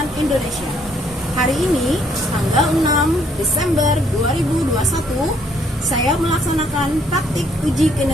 Indonesia. Hari ini, tanggal 6 Desember 2021, saya melaksanakan praktik uji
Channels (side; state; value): both; normal; correlation 0.67